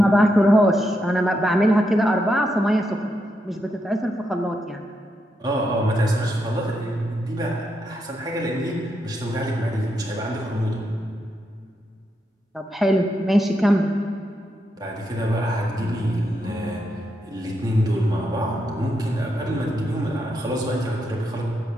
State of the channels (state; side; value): normal; both; correlation 0.82